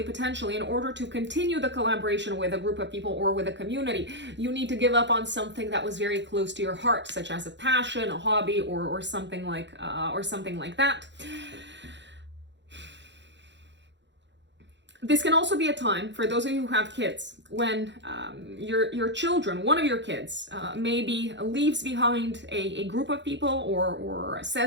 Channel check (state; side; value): late; left; 0.52 ms